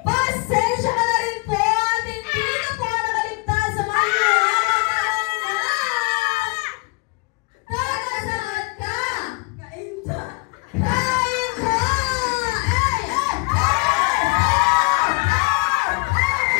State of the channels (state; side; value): quieter; right; 27.8 dB